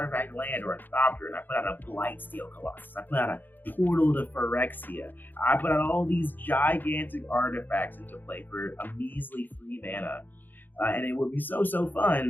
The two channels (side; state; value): right; late; 0.089 ms